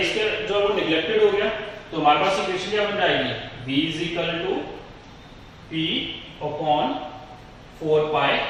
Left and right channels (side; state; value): both; identical; correlation 1.00